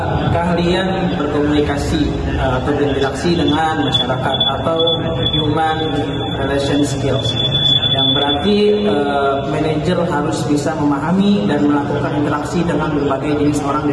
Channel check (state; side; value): identical; both; correlation 1.00